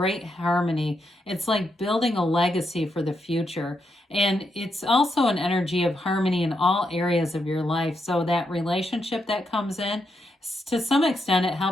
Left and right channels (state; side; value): normal; both; correlation 0.81